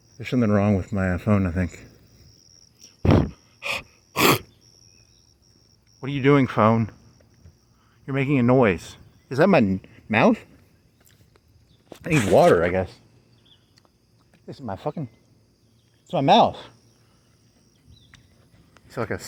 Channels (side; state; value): both; identical; correlation 1.00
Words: There's something wrong with my phone, I think. What are you doing, phone? You're making a noise. Is that my mouth? I need water, I guess. This is my fucking... It's my mouth. It's like a